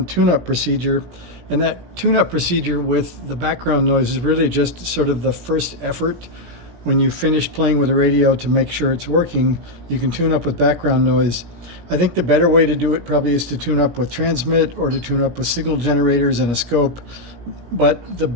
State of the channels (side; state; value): left; late; 17 ms